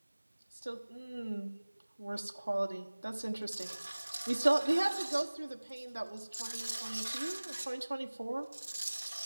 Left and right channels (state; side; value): inverted; both; correlation -1.00